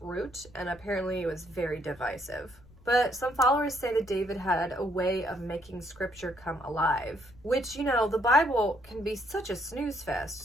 Root, and apparently it was very divisive. But some followers say that David had a way of making scripture come alive, which, you know, the Bible can be such a snooze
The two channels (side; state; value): left; noise; rumble, 25 dB below the sound